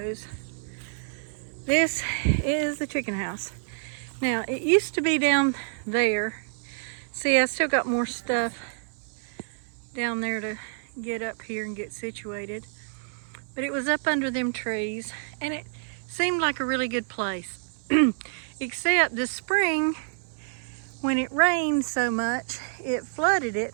This is the chicken house. Now, it used to be down there. See, I still got more stuff down there to get up here and get situated. But it was up under them trees, and it seemed like a really good place. Except this spring, when it rained so much, it flooded it.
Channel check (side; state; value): left; silent; digital silence